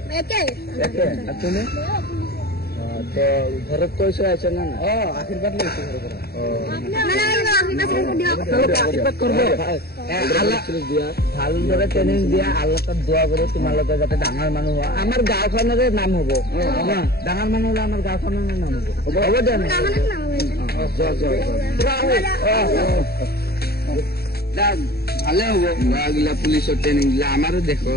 একে আর তুমি তো ঘরত কইছে আছে না আশীর্বাদ লইছে ঘর করে আশীর্বাদ করব আল্লাহ দিয়া ভালদৰে ট্ৰেনিং দিয়া আল্লাহ তাত দোয়া কৰো তোমালোকে যাতে ডাঙৰ মানুহ হয় আমাৰ গাঁওখনৰে নাম হ'ব ডাঙৰ মানুহ হলে আমাৰ গাঁওখনৰে নাম হ'ব হ'ব দে ভালে হ'ব গিলা পুলিচৰ ট্ৰেনিং দিলে আমাৰো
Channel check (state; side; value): late; right; 0.46 ms